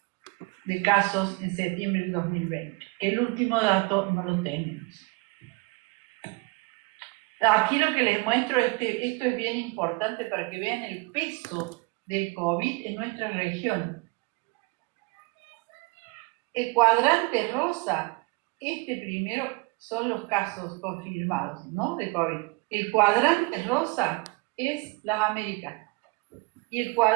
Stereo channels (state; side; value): quieter; left; 27.8 dB